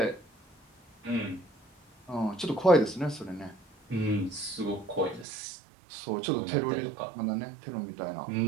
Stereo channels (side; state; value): left; drops out; at 5.2 s